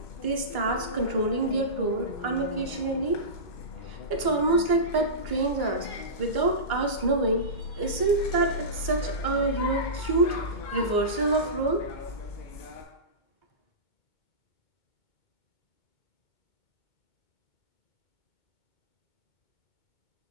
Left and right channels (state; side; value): late; right; 2.2 ms